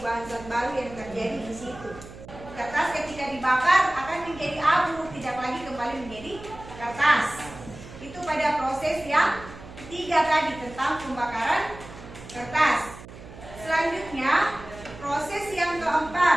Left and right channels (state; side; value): noise; right; hum, 16 dB below the sound